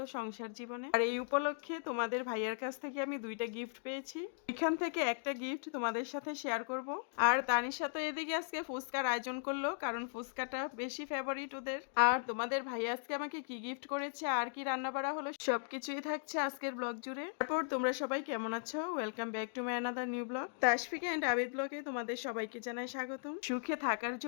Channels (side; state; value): right; silent; digital silence